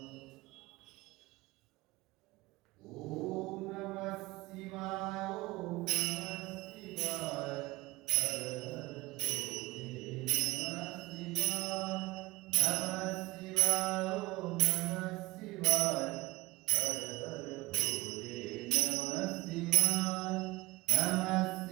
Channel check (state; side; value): quieter; left; 20.4 dB